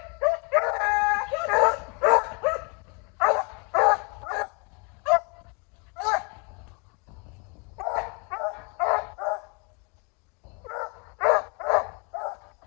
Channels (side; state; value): right; quieter; 32.8 dB